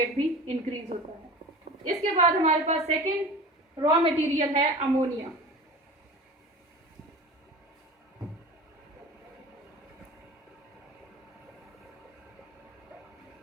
भी इंक्रीज होता है। इसके बाद हमारे पास सेकेंड रॉ मटेरियल है अमोनिया।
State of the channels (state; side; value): normal; both; correlation 0.36